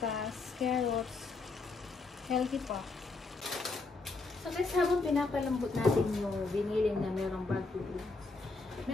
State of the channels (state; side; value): quieter; right; 3.8 dB